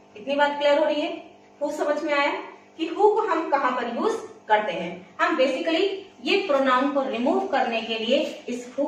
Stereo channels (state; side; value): identical; both; correlation 1.00